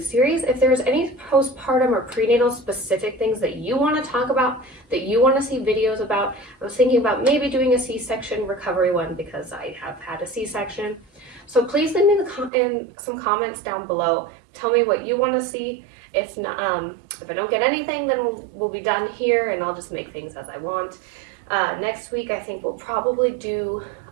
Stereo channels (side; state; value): left; drops out; at 12.5 s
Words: series. If there's any postpartum or prenatal specific things that you want to talk about, that you want to see videos about, I was thinking about maybe doing a C-section recovery one because I have had a C-section. So please leave me in some comments down below. Tell me what you want to see. If not, if I don't get anything, then we'll be done here and I'll just make things as I want. Next week, I think we'll probably do